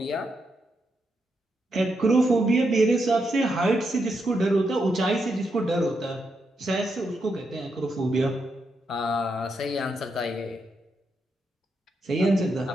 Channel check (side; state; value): both; normal; correlation 0.82